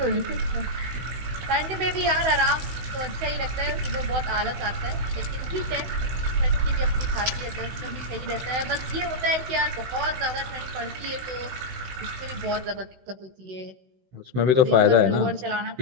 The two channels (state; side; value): late; left; 16 ms